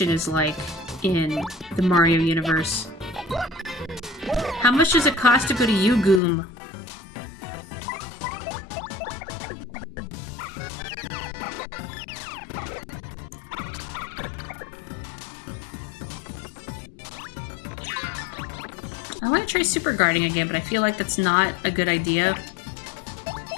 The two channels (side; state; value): right; drops out; at 6.2 s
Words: is like in the Mario universe? How much does it cost to go to Goom? I want to try super guarding again, but I feel like that's not a good idea.